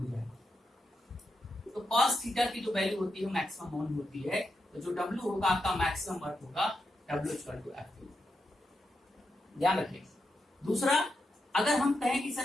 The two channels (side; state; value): both; normal; correlation 0.85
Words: जाए तो कॉस थीटा की जो वैल्यू होती है मैक्सिमम वन होती है। तो जो W होगा आपका मैक्सिमम वर्क होगा W=F2। ध्यान रखिए। दूसरा, अगर हम कहें कि सर